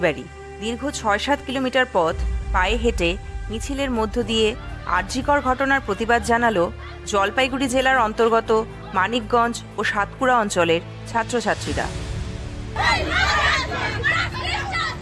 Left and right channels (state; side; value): identical; both; correlation 1.00